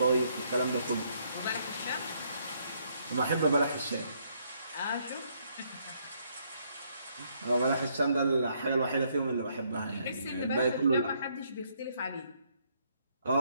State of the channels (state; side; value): inverted; both; correlation -0.71